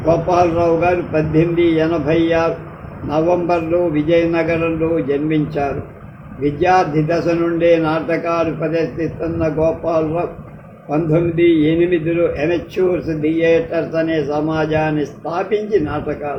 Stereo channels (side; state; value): both; identical; correlation 1.00